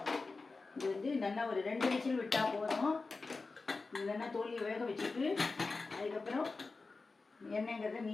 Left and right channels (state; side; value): quieter; right; 3.9 dB